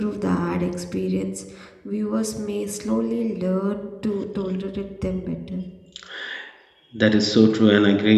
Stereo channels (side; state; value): both; identical; correlation 1.00